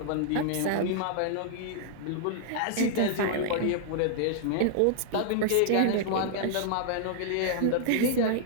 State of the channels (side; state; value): both; different; correlation -0.01